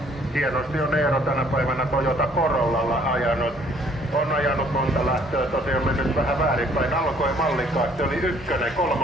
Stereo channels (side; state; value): both; normal; correlation 0.61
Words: Hienosti on Eero tänä päivänä Toyota Corollalla ajanut. On ajanut monta lähtöä, tosiaan mennyt vähän väärinpäin. Alkoi mallikkaasti, oli 1,